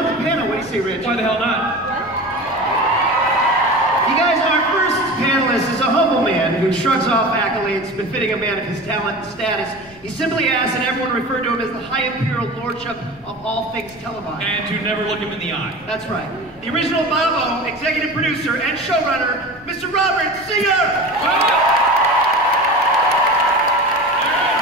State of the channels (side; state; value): left; noise; rumble, 25 dB below the sound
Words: with the panel. What do you say, Rich? Why the hell not? You guys, our first panelist is a humble man who shrugs off accolades befitting a man of his talent and status. He simply asks that everyone refer to him as the High Imperial Lordship of all things televised. And to never look him in the eye. That's right. The original Bobo, executive producer and showrunner, Mr. Robert Singer!